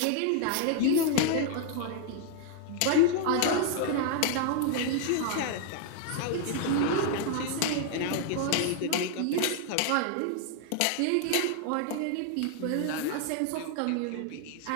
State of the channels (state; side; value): different; both; correlation 0.00